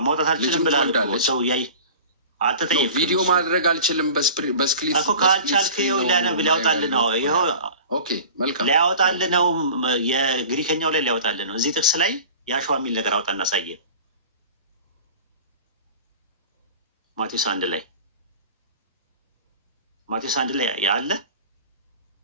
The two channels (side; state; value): both; inverted; correlation -0.39